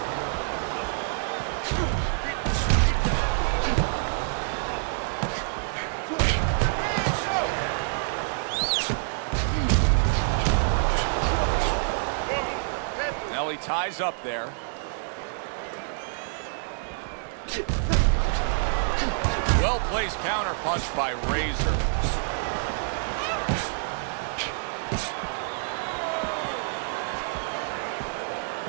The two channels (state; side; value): silent; left; digital silence